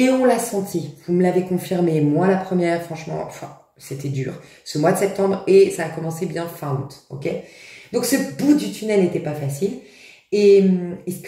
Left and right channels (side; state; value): both; identical; correlation 1.00